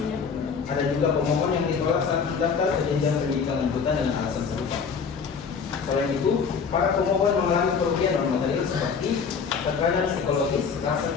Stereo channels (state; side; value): quieter; right; 5.9 dB